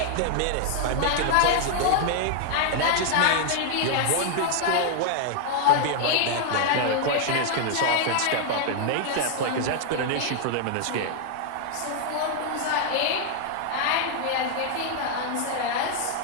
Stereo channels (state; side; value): different; both; correlation 0.00